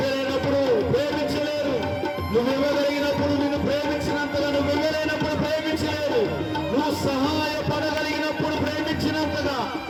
ప్రేమించలేరు. నువ్వు ఇవ్వగలిగినప్పుడు నిన్ను ప్రేమించినంతగా నువ్వు ఇవ్వలేనప్పుడు ప్రేమించలేరు. నువ్వు సహాయపడగలిగినప్పుడు ప్రేమించినంతగా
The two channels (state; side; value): identical; both; correlation 1.00